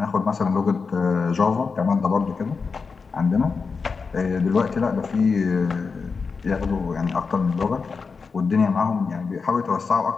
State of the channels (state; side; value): quieter; right; 5.0 dB